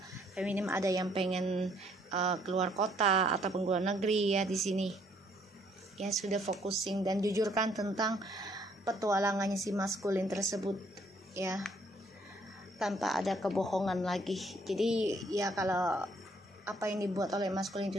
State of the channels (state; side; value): normal; both; correlation 0.66